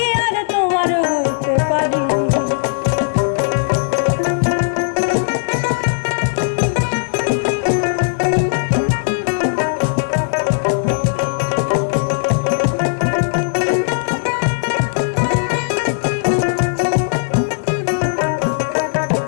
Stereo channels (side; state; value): right; silent; 60 dB below the other